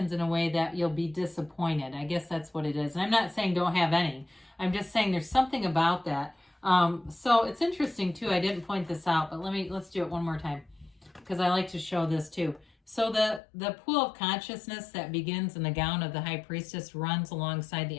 in a way that you'll be disappointed. I guess that's what it is. And I'm not saying don't have any. I'm just saying there's something about that. So it's interesting too. I didn't point this out, but let's do it one more time because I like to show this too. So the pool of consciousness that begins in the gown of the High Priestess runs alongside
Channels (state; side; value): drops out; right; at 13.4 s